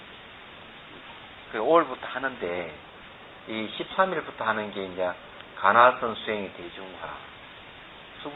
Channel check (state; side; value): identical; both; correlation 1.00